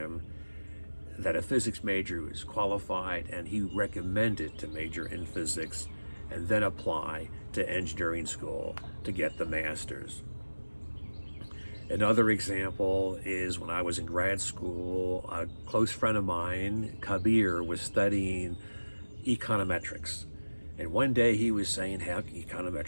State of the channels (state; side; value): inverted; both; correlation -1.00